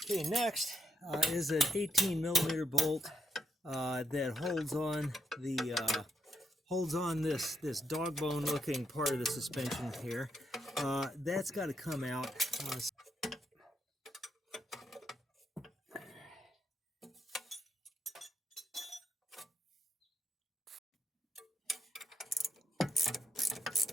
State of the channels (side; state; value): both; normal; correlation 0.82